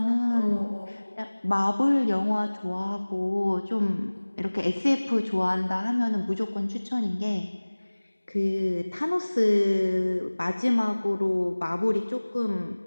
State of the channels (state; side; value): inverted; both; correlation -1.00